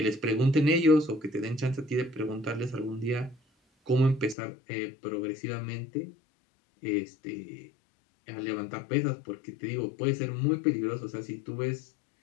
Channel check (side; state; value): right; drops out; at 4.4 s